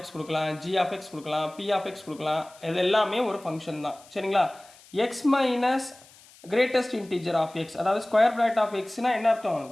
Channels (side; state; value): left; noise; hiss, 24 dB below the sound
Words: x கொடுக்கலாம், g of x கொடுக்கலாம், p of x கொடுக்கலாம், இது எல்லாமே ஒரு ஃபங்க்ஷன் தான். சரிங்களா, x minus greatest integer of x, அதாவது ஸ்கொயர் பிராக்கெட் ஆஃப் எக்ஸ்னால் என்ன அர்த்தம்,